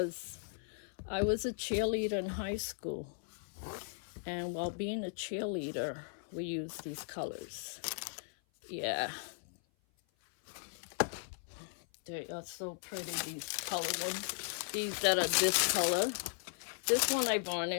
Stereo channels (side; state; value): right; silent; 53 dB below the other